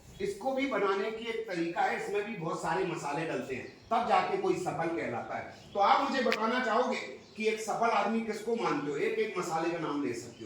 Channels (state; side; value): identical; both; correlation 1.00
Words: इसको भी बनाने की एक तरीका है, इसमें भी बहुत सारे मसाले डलते हैं, तब जाके कोई सफल कहलाता है। तो आप मुझे बताना चाहोगे कि एक सफल आदमी किसको मानते हो? एक एक मसाले का नाम ले सकते